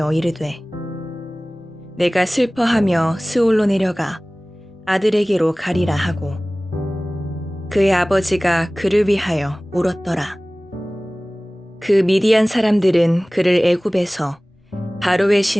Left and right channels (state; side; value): normal; both; correlation 0.98